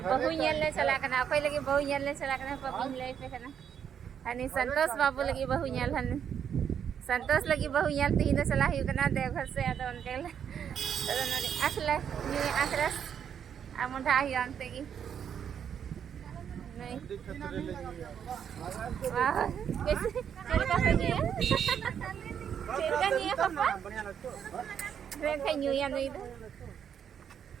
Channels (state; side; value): quieter; left; 8.3 dB